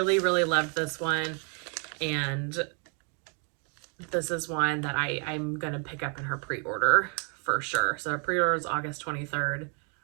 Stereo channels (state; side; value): quieter; left; 38.2 dB